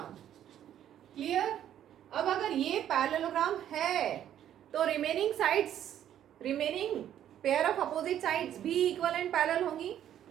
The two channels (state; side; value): quieter; left; 10.8 dB